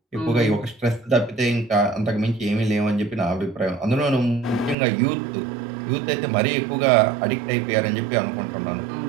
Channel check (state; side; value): drops out; left; at 4.8 s